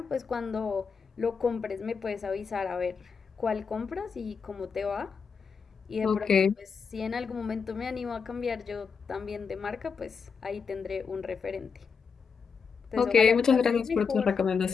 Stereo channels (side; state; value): right; quieter; 5.8 dB